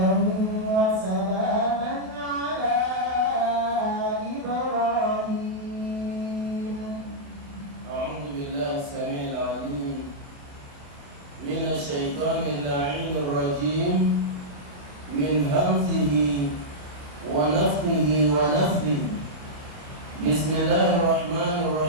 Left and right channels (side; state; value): left; late; 27 ms